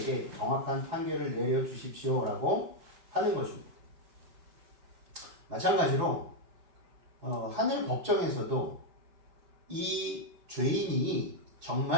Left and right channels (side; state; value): left; late; 4.8 ms